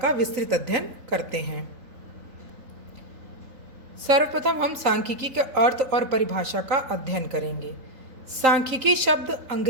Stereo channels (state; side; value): late; left; 3.8 ms